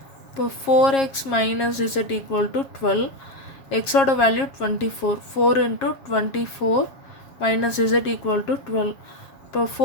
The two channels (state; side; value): late; right; 7.4 ms